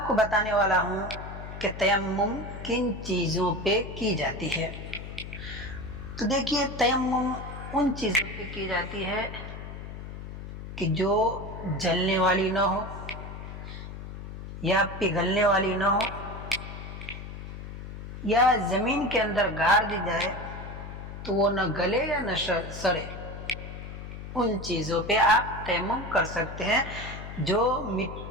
کو بتانے والا ہوں کہ تیمم کن چیزوں پہ کی جاتی ہے۔ تو دیکھیے تیمم ان چیزوں پہ کی جاتی ہے کہ جو جلنے والی نہ ہو یا پگھلنے والی نہ ہو، یا زمین کے اندر گاڑ دی جائے تو وہ نہ گلے یا نہ سڑے، ان چیزوں پہ آپ تیمم کر سکتے ہیں جو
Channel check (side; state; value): left; noise; hum, 10 dB below the sound